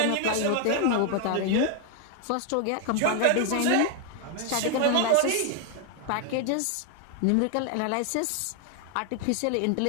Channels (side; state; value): both; different; correlation 0.01